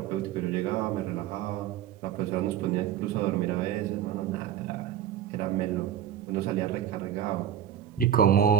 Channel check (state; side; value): quieter; left; 9.9 dB